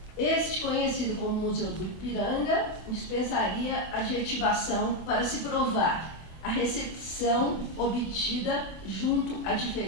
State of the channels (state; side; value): late; right; 25 ms